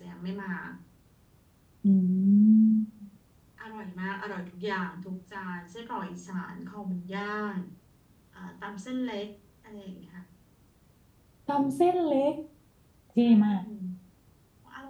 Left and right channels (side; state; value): both; identical; correlation 1.00